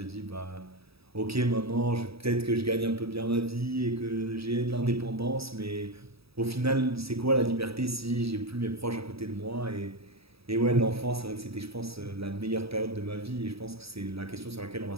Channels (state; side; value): late; left; 0.77 ms